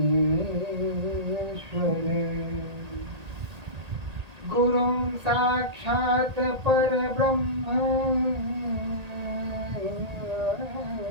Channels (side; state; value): left; late; 1.8 ms